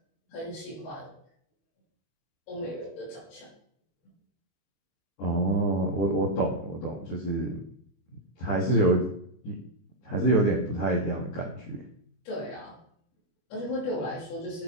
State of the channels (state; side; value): late; right; 25 ms